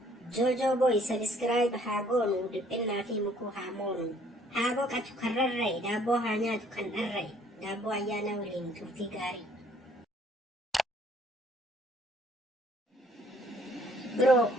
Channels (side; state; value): both; normal; correlation 0.61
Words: Joojoo Booy sabiskiraayib haa goonu, dhiphinnaa fi mukuu haa moonu. Haa boqatu kan rarra'e, daabboo haa nyaatu kan dharra'e. Daabboo ayyaana waliin turtii gaarii. Biroo